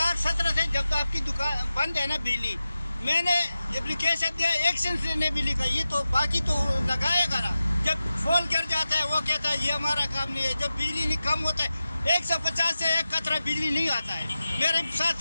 سے جب آپ کی دکان بند ہے نا بجلی، میں نے اپلیکیشن دیا، ایکشن سے نے بھی لکھا. یہ تو باقی تو لگائے گا نا. جب فون گر جاتا ہے وہ کہتا ہے یہ ہمارا کام نہیں ہے. جب بجلی نہیں کم ہوتا ہے 150 سے 1 قطرہ بجلی نہیں آتا ہے. میرے ساتھ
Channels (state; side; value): inverted; both; correlation -0.93